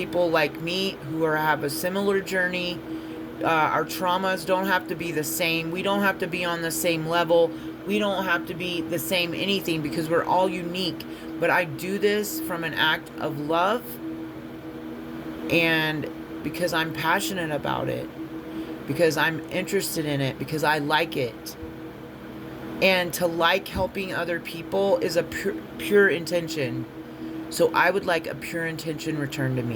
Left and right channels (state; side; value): identical; both; correlation 1.00